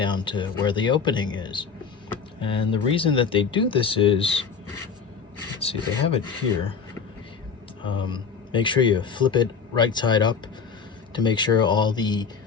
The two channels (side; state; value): right; quieter; 5.9 dB